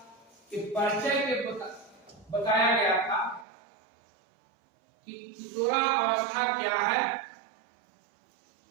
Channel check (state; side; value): drops out; left; at 3.5 s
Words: के परिचय के बताया गया था कि किशोरावस्था क्या है।